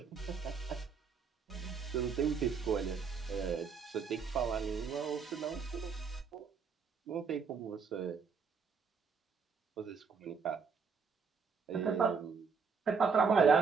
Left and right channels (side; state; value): left; quieter; 5.6 dB